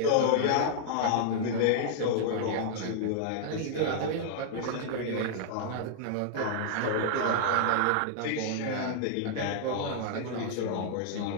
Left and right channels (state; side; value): different; both; correlation -0.01